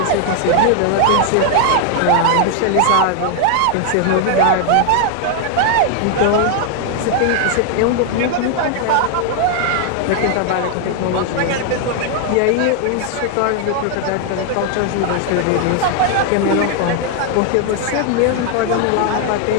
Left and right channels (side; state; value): both; different; correlation 0.00